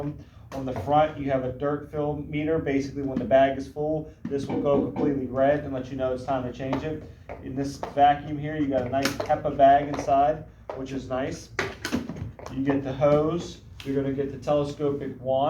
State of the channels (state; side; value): identical; both; correlation 1.00